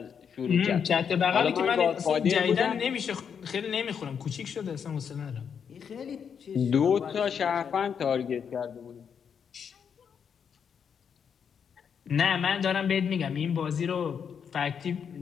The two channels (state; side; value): quieter; right; 7.2 dB